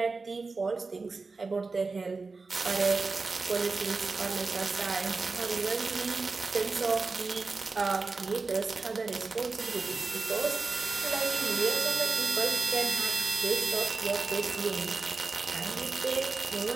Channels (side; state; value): left; quieter; 4.1 dB